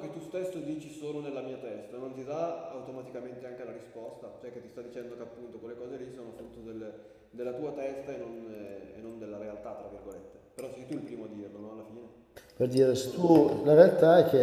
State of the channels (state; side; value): identical; both; correlation 1.00